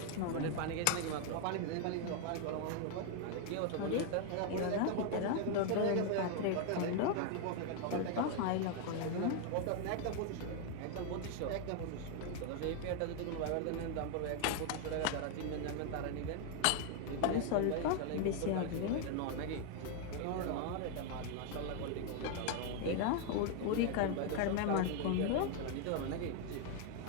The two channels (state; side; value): different; both; correlation 0.00